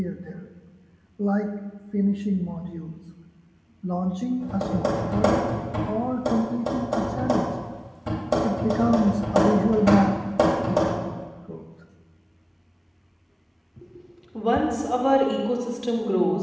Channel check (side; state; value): both; identical; correlation 1.00